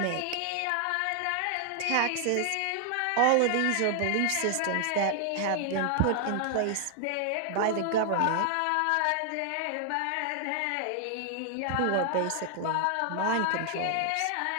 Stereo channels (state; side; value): different; both; correlation 0.00